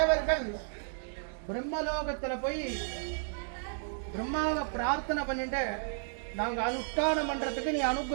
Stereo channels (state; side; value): silent; left; 56 dB below the other